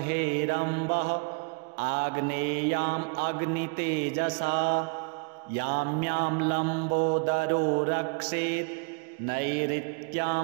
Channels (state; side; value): quieter; left; 35.3 dB